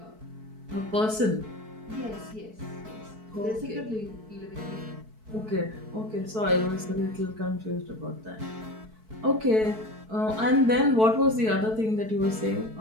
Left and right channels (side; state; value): left; late; 4.6 ms